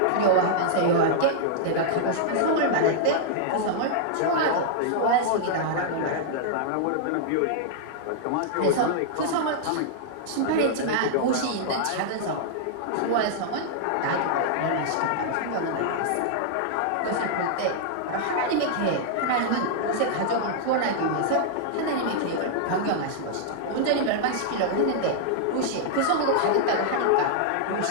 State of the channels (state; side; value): different; both; correlation -0.01